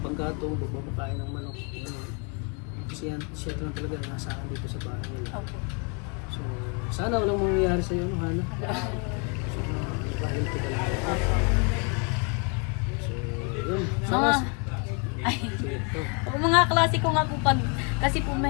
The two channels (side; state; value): right; quieter; 36.3 dB